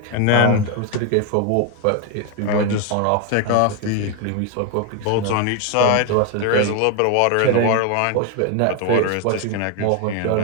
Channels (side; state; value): both; different; correlation 0.01